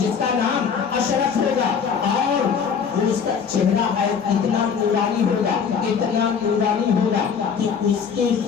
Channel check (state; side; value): quieter; right; 6.6 dB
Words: کا نام اشرف ہوگا، اور اس کا چہرہ ہے اتنا نورانی ہوگا، اتنا نورانی ہوگا کہ اس کے